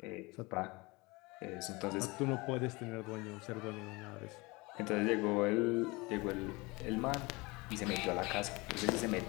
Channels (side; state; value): right; quieter; 24.6 dB